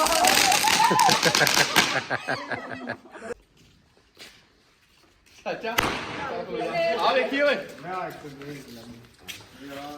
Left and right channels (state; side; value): identical; both; correlation 1.00